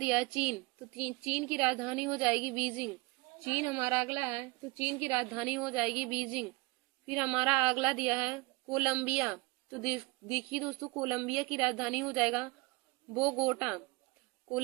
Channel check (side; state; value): left; quieter; 25.4 dB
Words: है चीन। तो चीन की राजधानी हो जाएगी बीजिंग। चीन हमारा अगला है, तो चीन की राजधानी हो जाएगी बीजिंग। फिर हमारा अगला दिया है कोलंबिया। तो देखिए दोस्तों, कोलंबिया की राजधानी हो जाएगा बोगोटा।